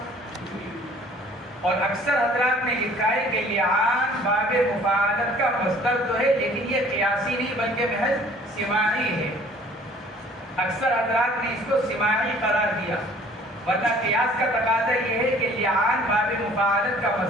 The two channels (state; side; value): normal; both; correlation 0.53